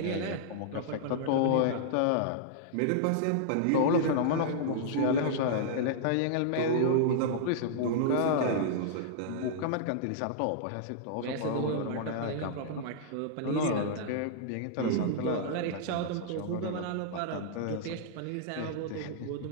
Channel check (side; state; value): both; different; correlation -0.02